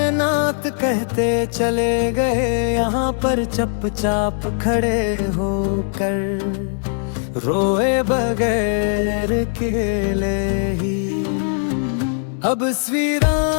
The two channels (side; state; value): right; silent; digital silence